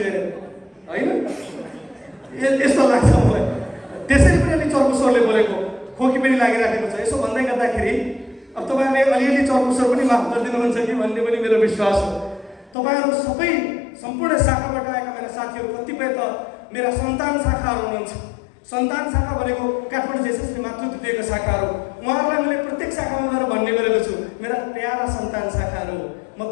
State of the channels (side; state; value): right; drops out; at 12.8 s